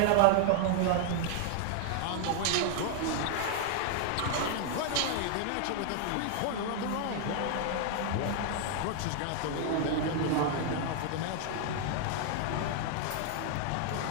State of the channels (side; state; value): both; different; correlation 0.00